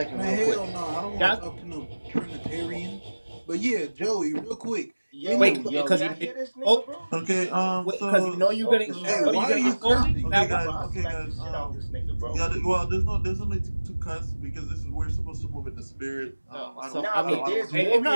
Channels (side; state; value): both; inverted; correlation -1.00